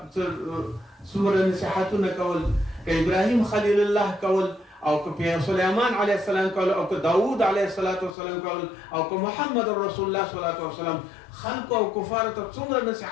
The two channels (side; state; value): right; drops out; at 8.2 s